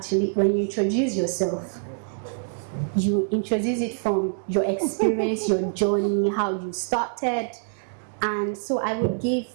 when you introduce yourself, you introduce it from your experience, your journey, how you started. And so I will give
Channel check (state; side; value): silent; left; digital silence